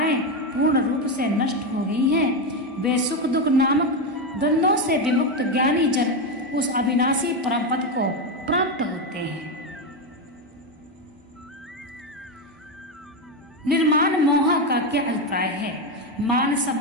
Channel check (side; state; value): both; normal; correlation 0.11